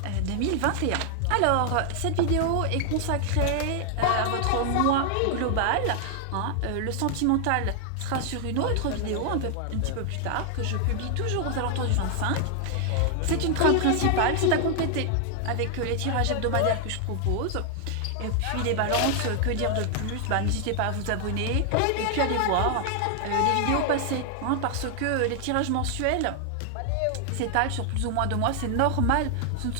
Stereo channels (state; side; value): different; both; correlation 0.00